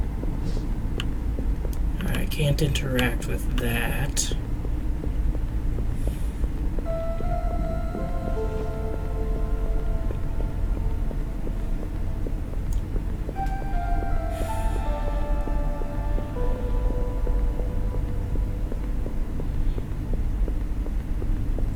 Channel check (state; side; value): identical; both; correlation 1.00